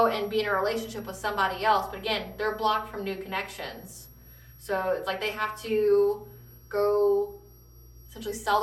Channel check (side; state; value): both; identical; correlation 1.00